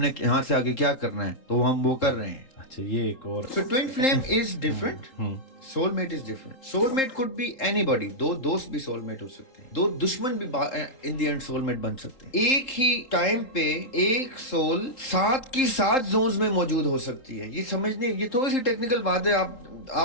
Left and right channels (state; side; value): late; right; 3.8 ms